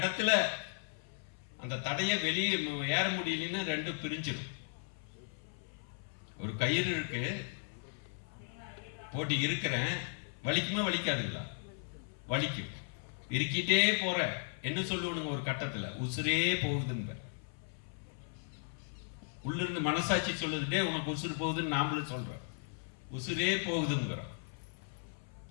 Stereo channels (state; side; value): silent; right; 54 dB below the other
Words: அந்த தடையை வெளியே ஏற முடியலன்னு 2 பிரிஞ்சிடும். ஒரு கயிறு இருக்கு, போட்டி இருக்கிறேன், வலிக்குமே வலிக்காதுங்களா? வலிக்கும். இருக்கிட்டே போற என்ன சொல்லுவனுங்க? ஒரு கட்டத்துல உசுரே போகுதுன்னு உள்ள இருந்து மனசாட்சி சொல்லுதுட்டே உனக்கு உசுறு போகுதுன்னு நாமளும் சொல்றோம். உசுரே போகுதுங்கிறோம்.